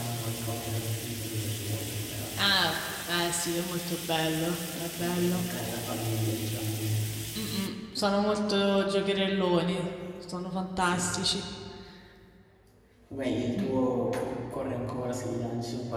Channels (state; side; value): identical; both; correlation 1.00